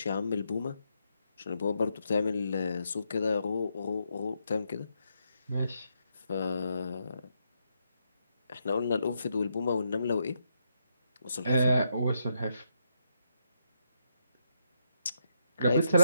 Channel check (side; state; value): both; inverted; correlation -0.79